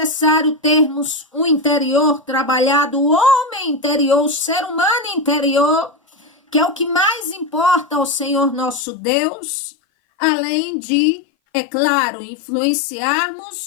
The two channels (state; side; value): drops out; right; at 8.8 s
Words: termos um interior trabalhado, o homem interior, o ser humano interior, que é o que mais importa ao Senhor nosso Deus, além de, é claro,